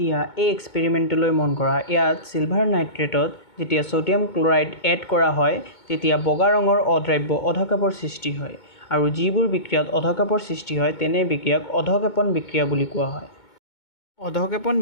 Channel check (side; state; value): right; late; 2.2 ms